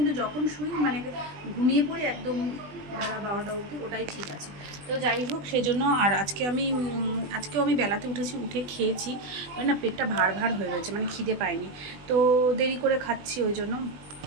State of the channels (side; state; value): left; late; 20 ms